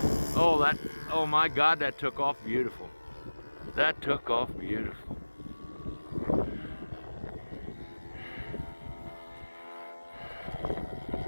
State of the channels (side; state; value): both; inverted; correlation -1.00